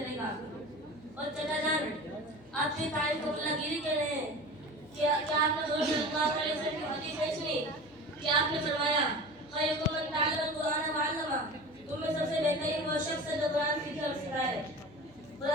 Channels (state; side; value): noise; left; hum, 26 dB below the sound